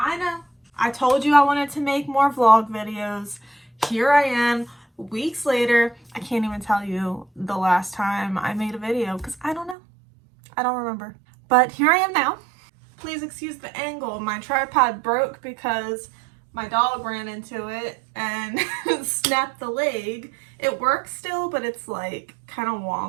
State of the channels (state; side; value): drops out; left; at 9.8 s